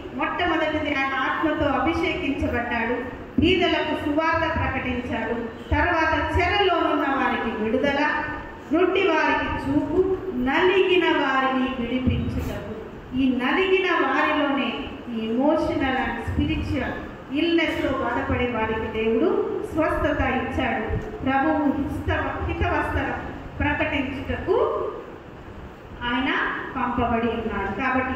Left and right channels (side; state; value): both; identical; correlation 1.00